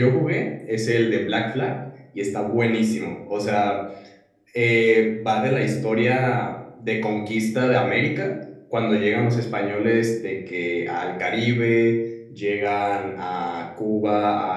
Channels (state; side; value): identical; both; correlation 1.00